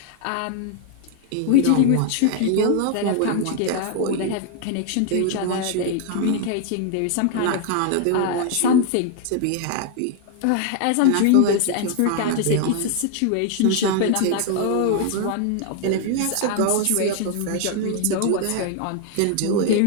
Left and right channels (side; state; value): both; different; correlation 0.00